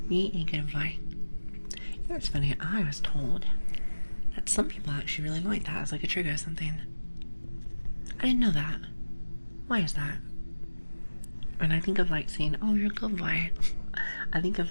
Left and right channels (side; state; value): both; inverted; correlation -1.00